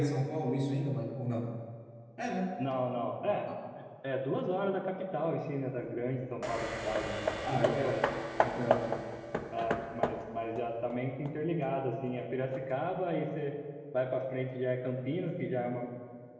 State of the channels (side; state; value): both; identical; correlation 1.00